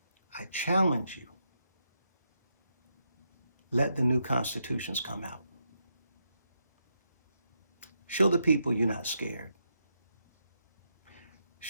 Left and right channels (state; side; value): inverted; both; correlation -0.82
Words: I challenge you. Let the new constitutions come out. Show the people you're not scared.